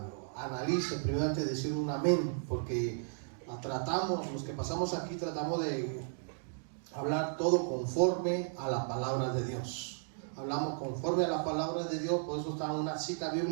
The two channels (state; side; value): silent; left; digital silence